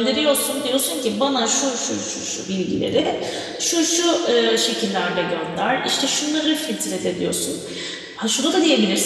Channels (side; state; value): both; identical; correlation 1.00